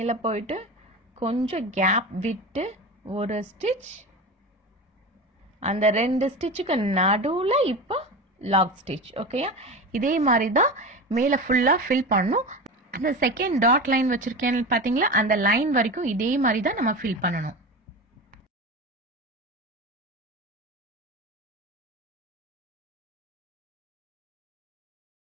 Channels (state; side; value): normal; both; correlation 0.27